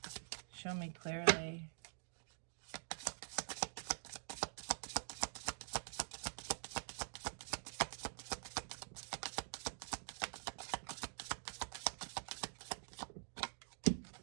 Show me clearly.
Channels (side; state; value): left; silent; digital silence